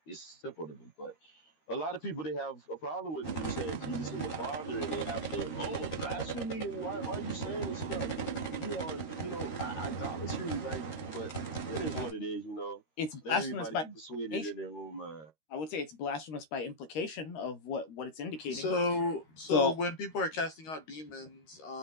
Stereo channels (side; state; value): right; late; 13 ms